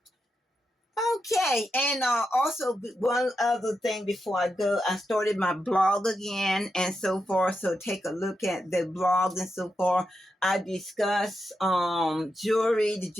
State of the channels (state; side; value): normal; both; correlation 0.86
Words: Okay, and also one other thing before I go, I started my blog again and so forth. So take a look at the blog and so forth. I discuss jewelry, the